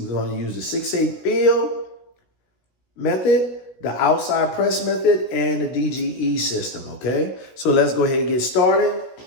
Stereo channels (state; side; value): late; right; 16 ms